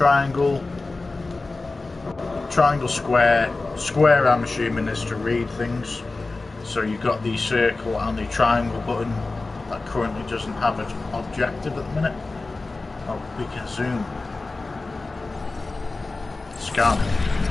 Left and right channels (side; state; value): right; quieter; 3.5 dB